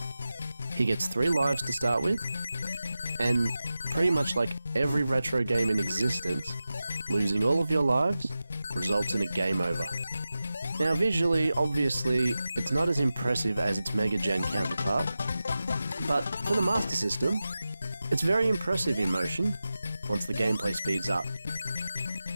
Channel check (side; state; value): both; inverted; correlation -0.94